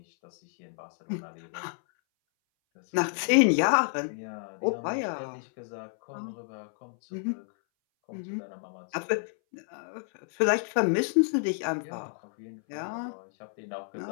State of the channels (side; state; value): right; silent; 58 dB below the other